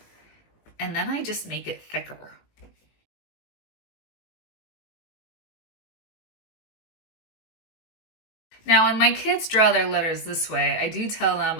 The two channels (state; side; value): late; right; 18 ms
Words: And then I just make it thicker. Now, when my kids draw their letters this way, I do tell them